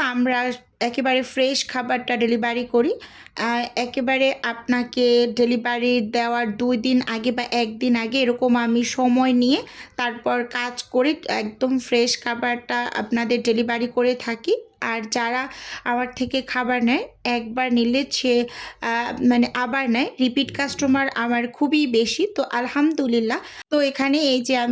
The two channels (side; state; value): both; identical; correlation 1.00